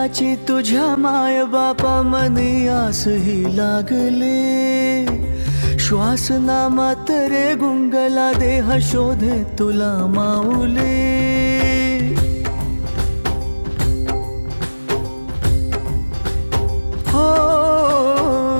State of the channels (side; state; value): both; inverted; correlation -1.00